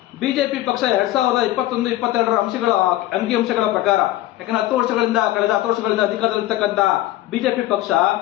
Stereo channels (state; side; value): quieter; right; 15.6 dB